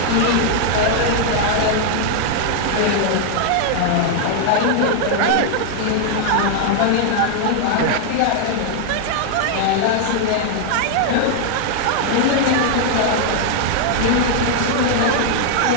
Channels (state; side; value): different; both; correlation 0.00